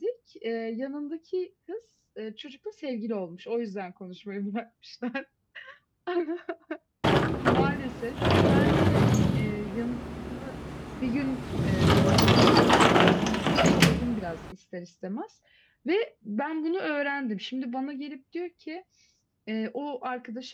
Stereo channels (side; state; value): both; identical; correlation 1.00